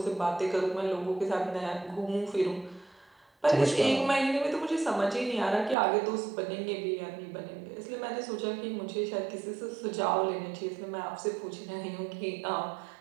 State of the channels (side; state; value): left; drops out; at 5.8 s